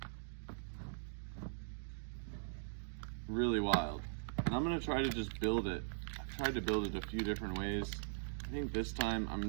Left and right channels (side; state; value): left; silent; digital silence